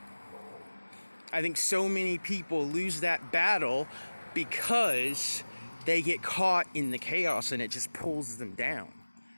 I think so many people lose that battle because they get caught in the chaos and it just pulls them down.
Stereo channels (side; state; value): both; inverted; correlation -1.00